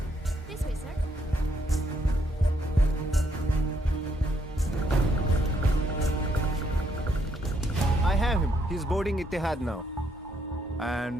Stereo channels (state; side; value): normal; both; correlation 0.73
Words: This way, sir. I have him. He's boarding Etihad now.